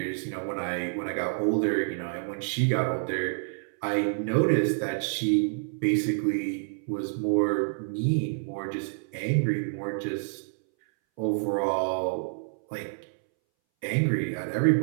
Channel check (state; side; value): silent; left; 59 dB below the other